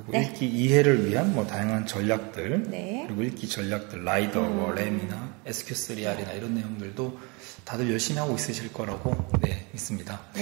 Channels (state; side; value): quieter; left; 29.7 dB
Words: 네. 읽기 이해를 위한 뭐 다양한 전략들, 네. 그리고 읽기 전략들, 라이더, 램이나 SQ3R이나 이런 내용들도 다들 열심히 하고 있으실 거라고 믿습니다.